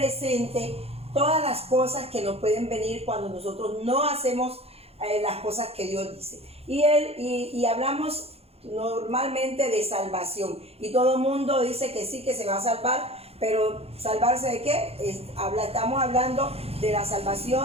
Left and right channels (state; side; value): late; left; 0.29 ms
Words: todas las cosas que nos pueden venir cuando nosotros no hacemos las cosas que Dios dice. Y hablamos normalmente de salvación, y todo el mundo dice que sí, que se va a salvar, pero ¿salvarse de qué? Estamos hablando de la